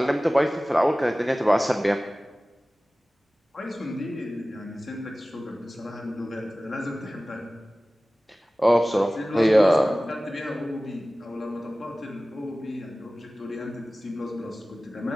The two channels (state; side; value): normal; both; correlation 0.97